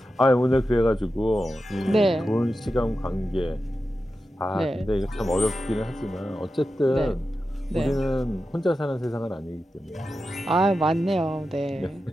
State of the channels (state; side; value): normal; both; correlation 0.91